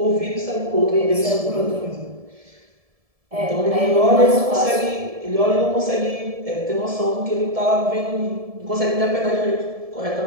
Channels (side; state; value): left; late; 1.7 ms